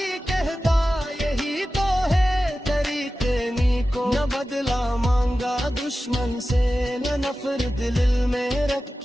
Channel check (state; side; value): normal; both; correlation 0.94